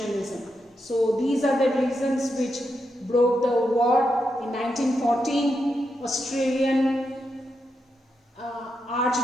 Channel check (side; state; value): both; normal; correlation 0.84